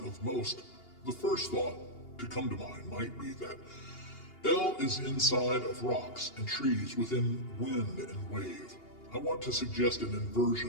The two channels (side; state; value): right; late; 2.8 ms